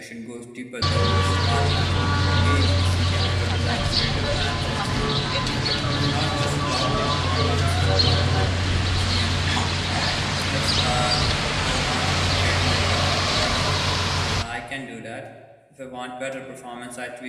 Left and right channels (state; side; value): identical; both; correlation 1.00